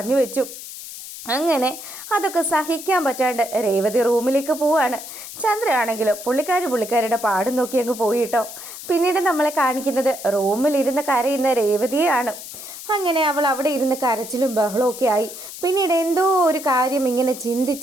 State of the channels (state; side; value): noise; left; hiss, 12 dB below the sound